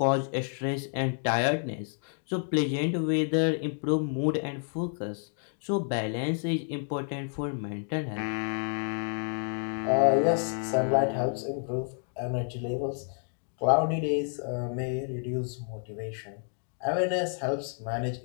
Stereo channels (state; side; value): silent; right; 58 dB below the other